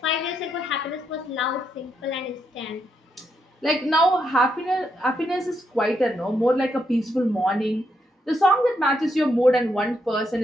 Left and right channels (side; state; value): both; normal; correlation 0.79